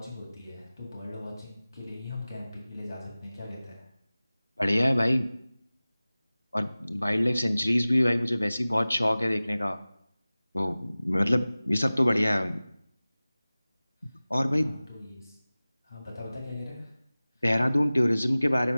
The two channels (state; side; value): inverted; both; correlation -0.98